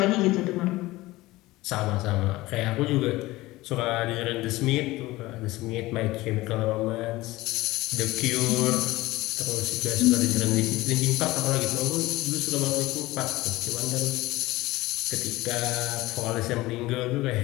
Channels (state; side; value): quieter; right; 18.9 dB